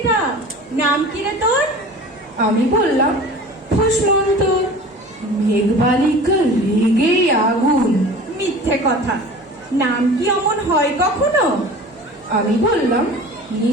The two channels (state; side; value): normal; both; correlation 0.40